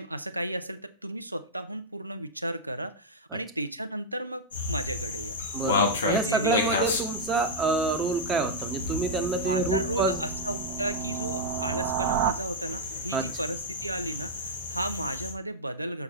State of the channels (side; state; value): both; normal; correlation -0.08